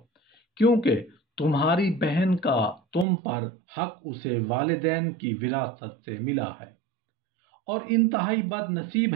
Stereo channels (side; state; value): left; drops out; at 3.1 s